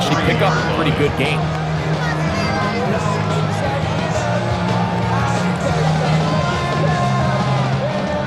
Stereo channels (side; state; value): both; identical; correlation 1.00